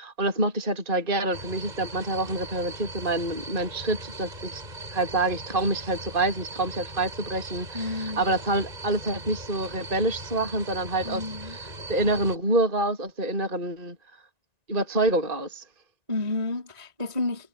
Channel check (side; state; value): left; late; 1.9 ms